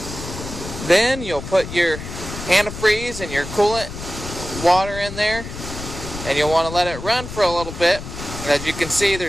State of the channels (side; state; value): left; noise; rumble, 9 dB below the sound